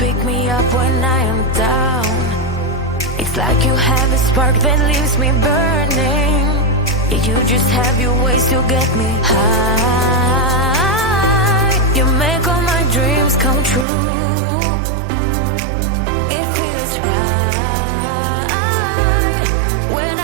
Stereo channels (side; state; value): left; drops out; at 13.9 s